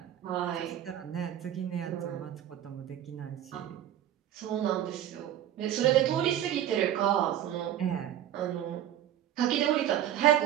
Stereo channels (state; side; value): quieter; left; 11.5 dB